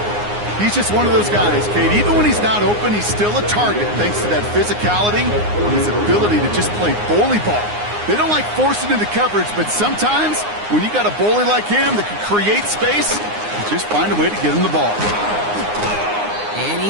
He's just one of those guys, Kate. Even when he's not open, he's still a target thanks to that physicality and his ability to just play bully ball. They don't like forcing into coverage, but sometimes when you got a bully like him that can create space, you just find a way to get him the ball. And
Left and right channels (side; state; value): left; late; 9.7 ms